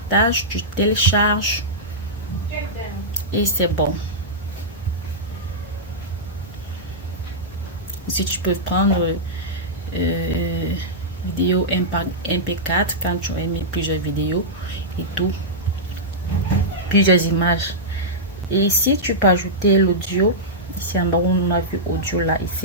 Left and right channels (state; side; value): normal; both; correlation -0.12